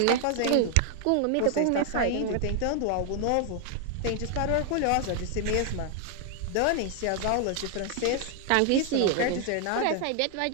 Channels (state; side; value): different; both; correlation 0.00